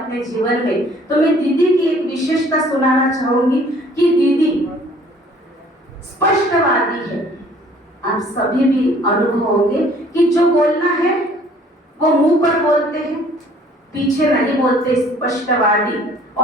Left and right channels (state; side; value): normal; both; correlation 0.56